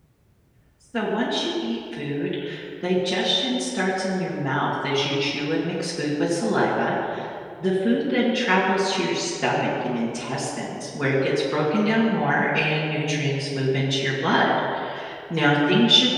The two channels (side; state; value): both; identical; correlation 1.00